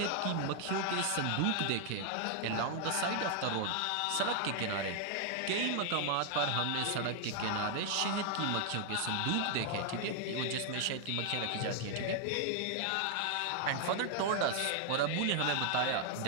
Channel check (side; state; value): both; different; correlation 0.00